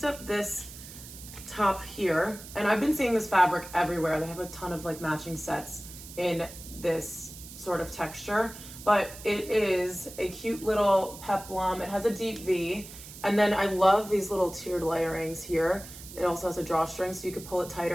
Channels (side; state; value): right; noise; hiss, 15 dB below the sound